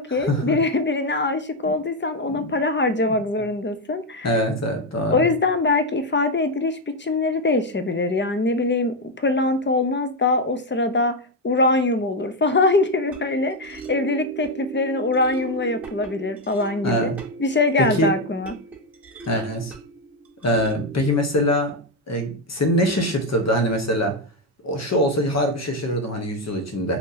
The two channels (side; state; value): both; normal; correlation 0.06